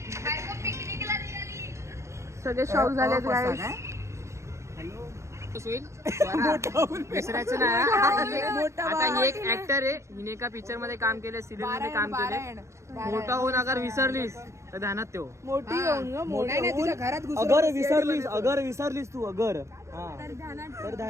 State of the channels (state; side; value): late; left; 0.14 ms